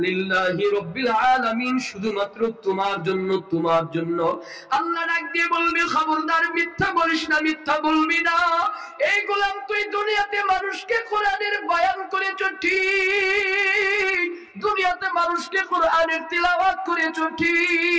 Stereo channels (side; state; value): both; identical; correlation 1.00